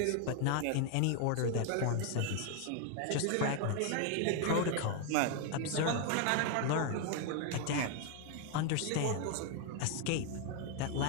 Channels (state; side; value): different; both; correlation 0.01